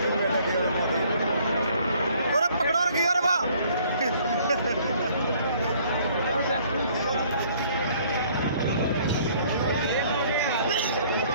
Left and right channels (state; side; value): inverted; both; correlation -0.60